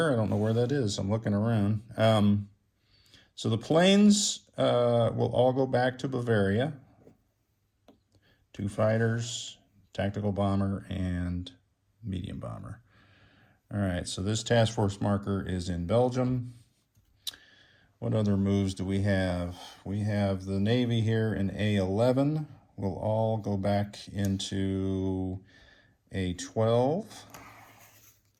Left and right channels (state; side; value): identical; both; correlation 1.00